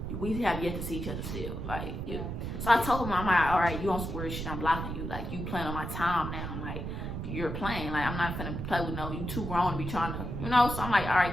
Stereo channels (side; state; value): right; noise; rumble, 5 dB below the sound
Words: we have yet to see each other still. Like, yeah. So I told him, I'm like, all right, you on some weird shit, I'm blocking you. Like, you playing on my time now. I'm like, you're playing. Like, I'm not finna play with you too grown to be trying to, So I'm like, all